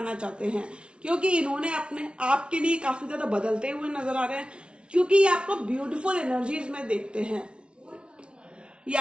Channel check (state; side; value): late; left; 0.058 ms